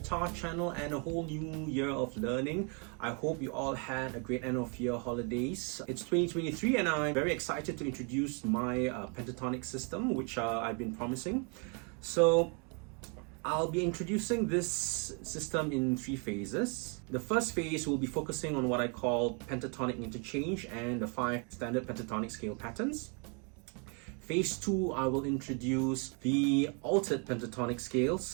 channel and a whole new year of learning. I hope you all had a great end of year holidays. It's 2023 and I'm very excited to introduce my pentatonic system, which I've been promising. So I'll be introducing this system in 3 phases. The first phase will be focusing on what I call Pentatonic Interchange and the 5 standard pentatonic scale patterns. Phase 2, I will introduce the altered pentatonic scales.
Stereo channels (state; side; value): quieter; left; 36.0 dB